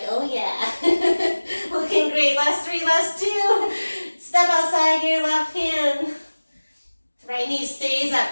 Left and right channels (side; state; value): both; inverted; correlation -1.00